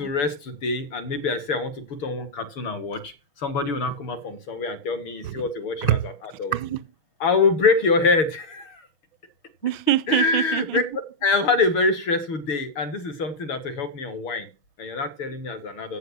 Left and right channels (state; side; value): late; right; 6.3 ms